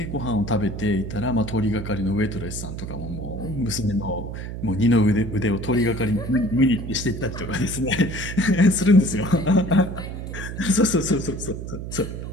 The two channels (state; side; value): noise; right; hum, 7 dB below the sound